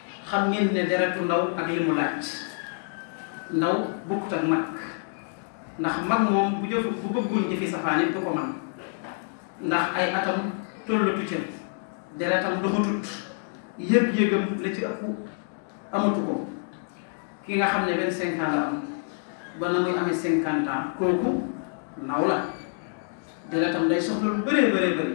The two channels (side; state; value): right; silent; 60 dB below the other